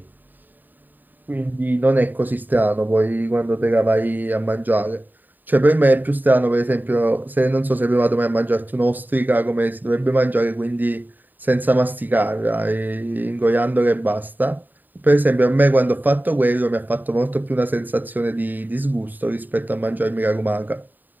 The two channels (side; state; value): left; late; 0.089 ms